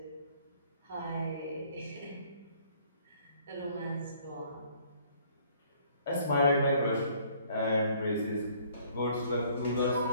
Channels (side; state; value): both; inverted; correlation -0.60